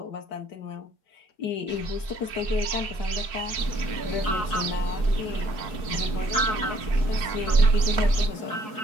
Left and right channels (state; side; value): late; right; 4.7 ms